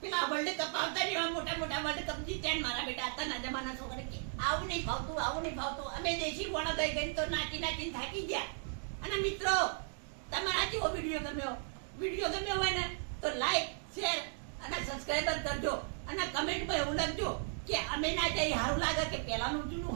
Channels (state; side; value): silent; left; 54 dB below the other